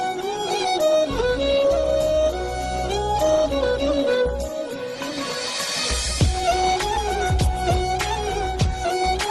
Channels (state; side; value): identical; both; correlation 1.00